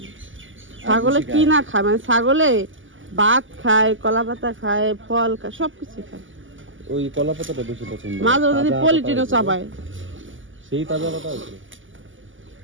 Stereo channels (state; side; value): late; left; 0.57 ms